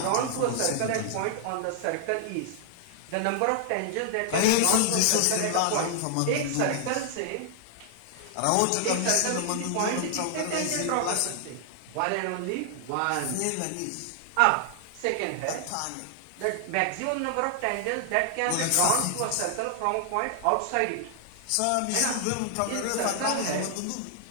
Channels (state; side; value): different; both; correlation 0.00